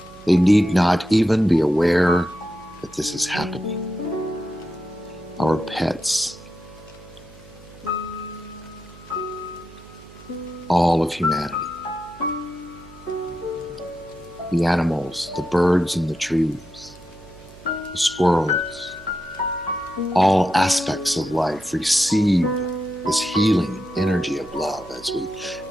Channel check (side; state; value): right; noise; hum, 21 dB below the sound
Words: They need not even be aware that this is happening. Our pets, all of humanity, the animals, the birds in the trees, the squirrels, all aspects of life receive this healing energy of love as we